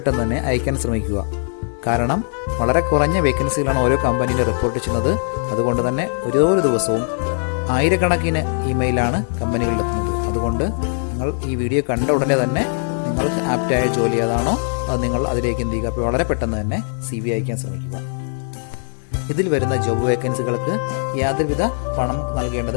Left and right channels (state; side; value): silent; right; 66 dB below the other